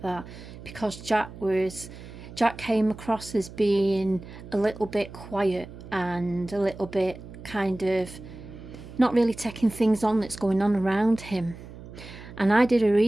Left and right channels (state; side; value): noise; right; hum, 15 dB below the sound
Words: that, because Jack came across as being a little bit quiet and a little bit kind of not really taking things on that's going on around him. And I did a